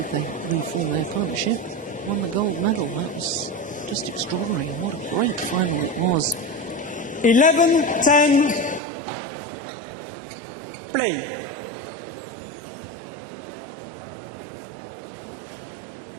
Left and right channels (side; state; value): left; drops out; at 8.8 s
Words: They reformed their partnership, won the gold medal. That was just extraordinary. What a great final it was. 11-10. Play.